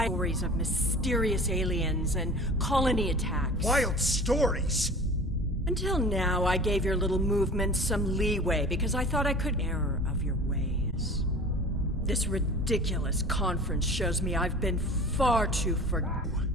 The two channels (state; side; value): normal; both; correlation 0.41